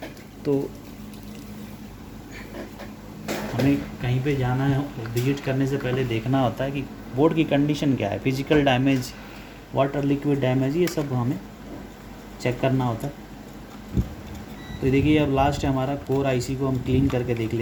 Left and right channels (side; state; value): both; identical; correlation 1.00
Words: तो हमें कहीं पे जाना है, विजिट करने से पहले देखना होता है कि बोर्ड की कंडीशन क्या है, physical damage, water liquid damage, ये सब हमें चेक करना होता है। तो देखिए अब लास्ट है हमारा कोर आईसी को हम क्लीन करके देख